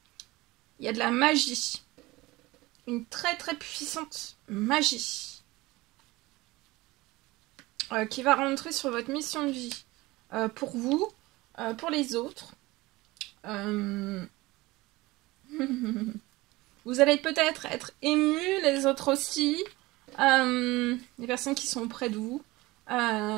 Il y a de la magie. Une très très puissante magie. Qui va rentrer sur votre mission de vie. Pour vous, pour les autres. Vous allez peut-être être ému, les autres aussi. Les personnes qui sont près de vous.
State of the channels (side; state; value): left; quieter; 20.5 dB